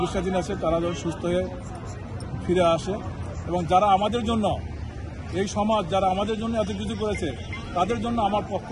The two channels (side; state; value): both; identical; correlation 1.00